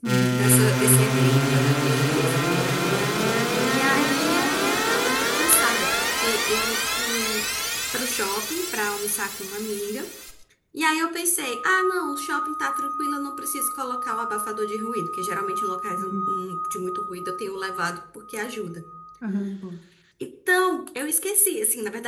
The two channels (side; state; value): both; identical; correlation 1.00